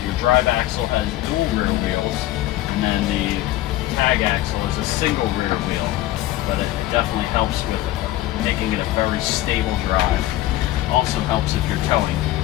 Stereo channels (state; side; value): quieter; right; 15.4 dB